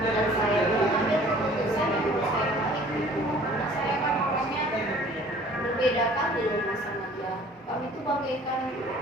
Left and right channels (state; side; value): normal; both; correlation 0.51